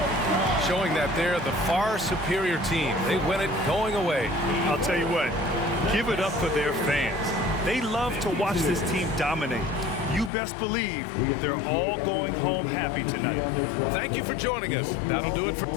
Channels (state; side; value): drops out; right; at 10.3 s